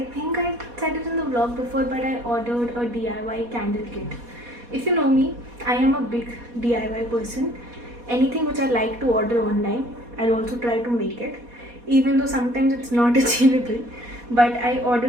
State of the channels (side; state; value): left; late; 4.2 ms